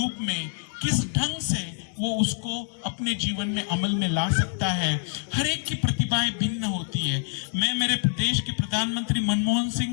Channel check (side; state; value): right; silent; 61 dB below the other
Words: में किस ढंग से वो उसको अपने जीवन में अमल में ला सकता है। हर एक की प्रतिभाएं भिन्न होती है। मैं मेरे देश के प्रधानमंत्री मनमोहन